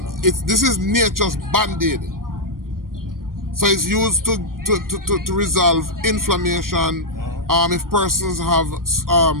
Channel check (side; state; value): left; late; 0.91 ms